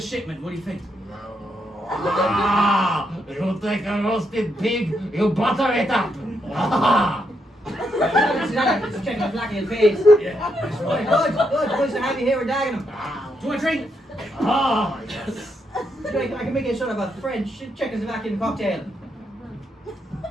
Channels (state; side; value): normal; both; correlation 0.79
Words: shipment? What do you think? Ah, you take a roasted pig, you butter it up. Ah. It's Czechoslovakian face. Yeah, that's Good, right. good. Good to have you here with Dagenham. Do you want a drink? Ah, yes. I can make you sort of a French Czechoslovakian cocktail.